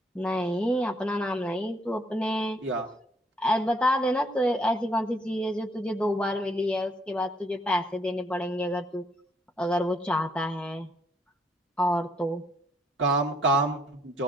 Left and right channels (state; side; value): normal; both; correlation 0.68